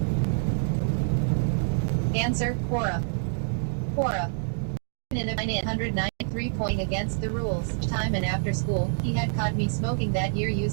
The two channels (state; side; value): silent; left; digital silence